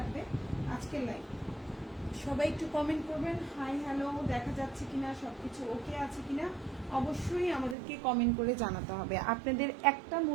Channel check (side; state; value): left; drops out; at 7.8 s